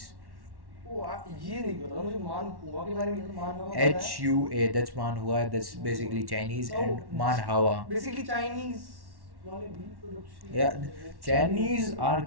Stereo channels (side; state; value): left; late; 1.1 ms